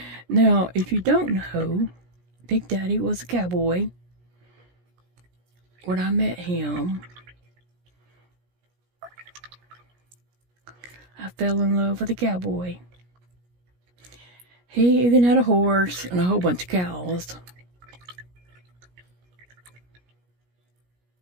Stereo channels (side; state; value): left; late; 17 ms